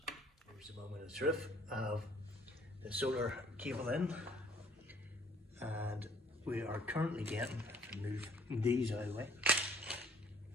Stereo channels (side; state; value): both; normal; correlation 0.60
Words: Here's the moment of truth. I have the solar cable in, and we are currently getting, if I move these out of the way,